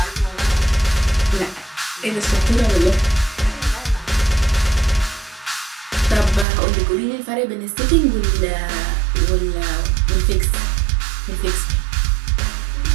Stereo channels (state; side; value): drops out; left; at 6.5 s